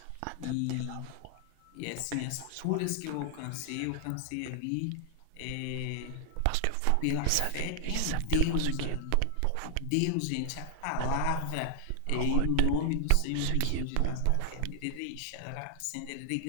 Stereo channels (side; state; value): both; different; correlation 0.00